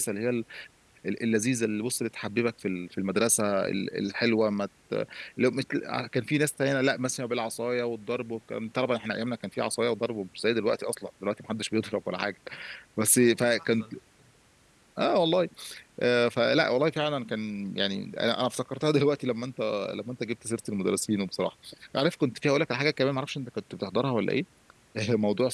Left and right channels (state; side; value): identical; both; correlation 1.00